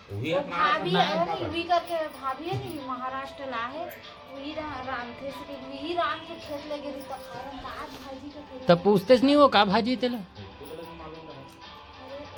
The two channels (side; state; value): both; identical; correlation 1.00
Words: वही वो अपना भाभी अपना है है वो भी करके भाभी है नहीं महाराष्ट्र ला है वही राम थे से वही राम के खेत लगे रही तो खारम दाल भाजी का खेत तब पूछते नहीं हो का भाजी तेला अरे